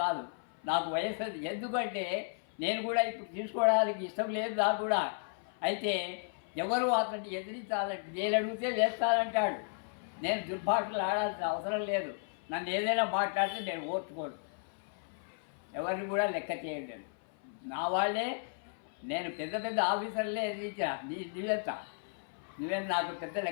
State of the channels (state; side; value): silent; right; 55 dB below the other